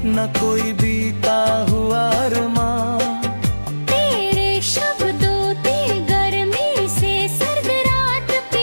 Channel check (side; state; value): both; inverted; correlation -1.00